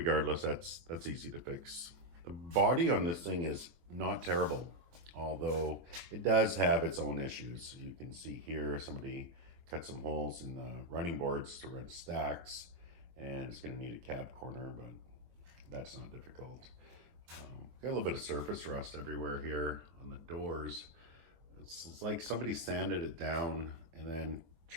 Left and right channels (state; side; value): late; left; 24 ms